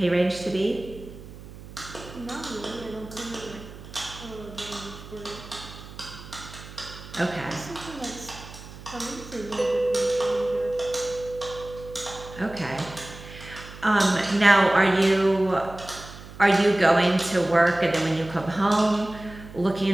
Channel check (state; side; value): noise; right; hum, 16 dB below the sound